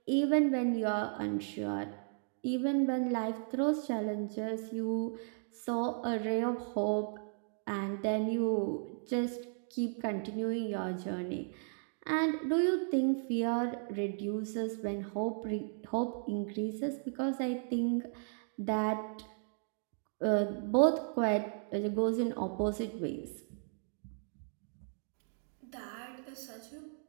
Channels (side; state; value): left; silent; digital silence